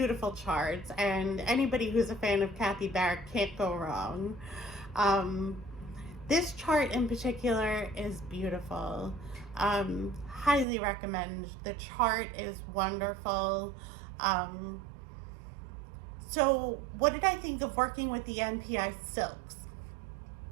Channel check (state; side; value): drops out; left; at 10.7 s